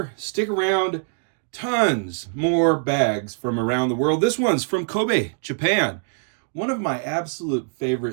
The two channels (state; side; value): silent; left; digital silence